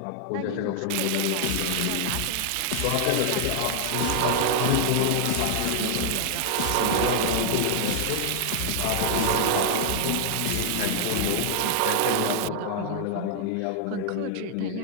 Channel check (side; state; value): both; different; correlation -0.01